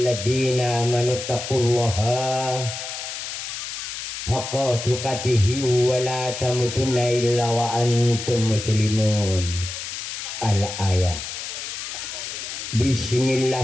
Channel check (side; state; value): left; noise; hiss, 7 dB below the sound